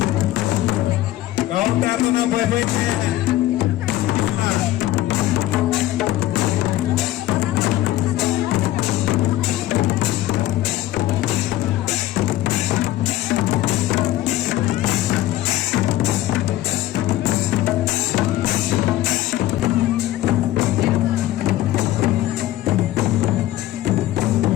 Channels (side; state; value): right; quieter; 15.0 dB